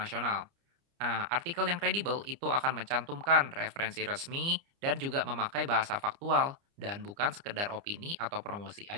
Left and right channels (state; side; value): late; left; 29 ms